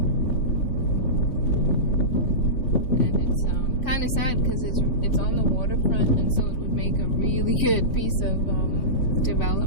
And it's kind of sad because it's on the waterfront, and so it would make a really good piece of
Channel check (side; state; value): right; late; 3.0 ms